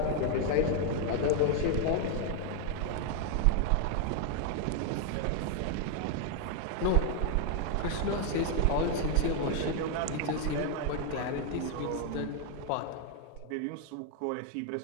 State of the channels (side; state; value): both; different; correlation 0.00